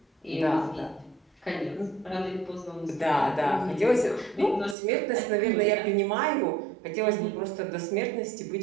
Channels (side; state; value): left; drops out; at 4.8 s